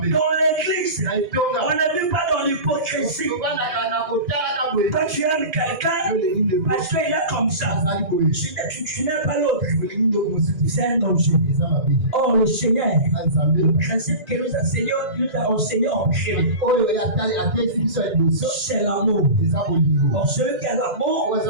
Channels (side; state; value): left; late; 2.9 ms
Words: l'église, on ne vit pas dans l'hypocrisie. Quand tu aimes quelqu'un, parce qu'il est comme ça, tu n'aimes pas l'autre. C'est un danger. Or, le Seigneur, le principe que nous a enseigné en prière, c'est l'amour. Or, celui qui a l'amour,